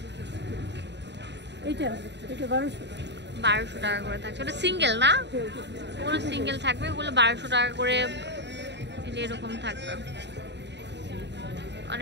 এটা 1200 টাকা করে থাকছে। ওটা সিঙ্গেল না, ওগুলো সিঙ্গেল থাকবে। ওগুলো 1200 টাকা করে এরকম থাকবে,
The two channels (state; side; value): late; left; 0.51 ms